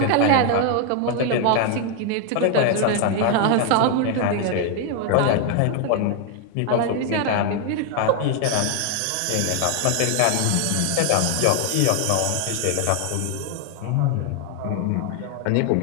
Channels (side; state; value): both; different; correlation 0.00